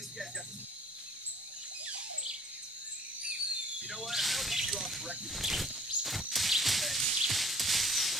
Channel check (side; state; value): both; normal; correlation 0.55